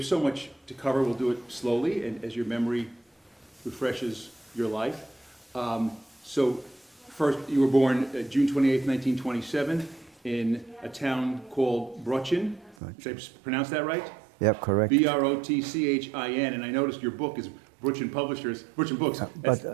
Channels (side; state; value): left; drops out; at 12.8 s